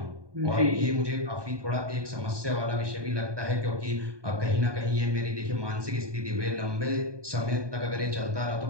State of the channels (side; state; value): left; late; 1.2 ms